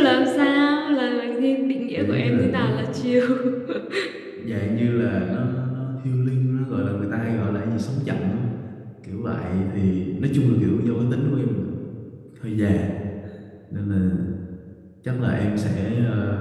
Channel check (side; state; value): both; identical; correlation 1.00